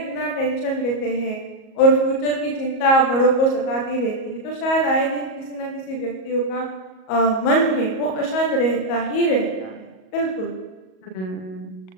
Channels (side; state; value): right; late; 37 ms